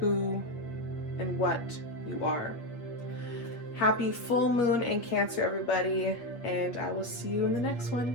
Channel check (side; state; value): right; late; 8.7 ms